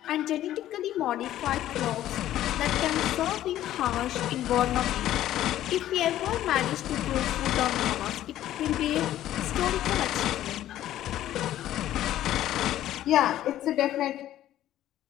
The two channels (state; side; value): quieter; right; 13.0 dB